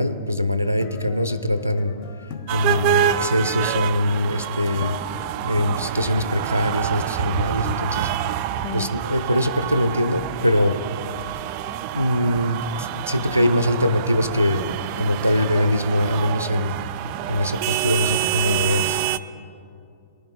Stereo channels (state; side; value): inverted; both; correlation -0.63